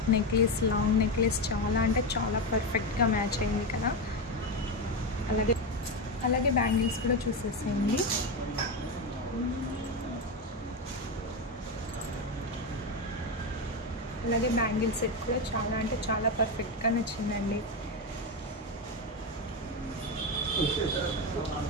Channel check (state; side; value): normal; both; correlation 0.13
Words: నెక్లెస్, లాంగ్ నెక్లెస్ చాలా అంటే చాలా పర్ఫెక్ట్గా మ్యాచ్ అయింది కదా. అలాగే బ్యాంగిల్స్ కూడా చూసేసేయండి. అలాగే బ్యాంగిల్ సెట్ కూడా చాలా అంటే చాలా పర్ఫెక్ట్గా నచ్చిందండి.